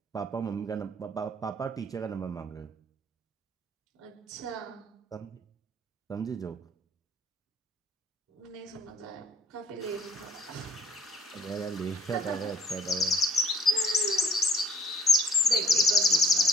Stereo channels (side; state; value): both; normal; correlation 0.61